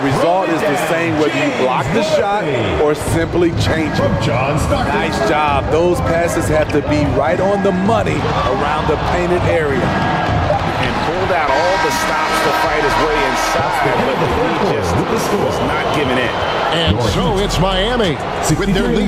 is the same whether you block the shot or simply change it. Nice job. Those passes have to be right on the money around the painted area. And pulled out all the stops to fight his way inside, but he just was not giving in. And so it's Miami with their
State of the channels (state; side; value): identical; both; correlation 1.00